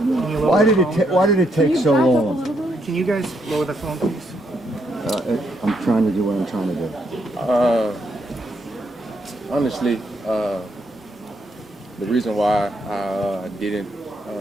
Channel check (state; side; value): normal; both; correlation 0.76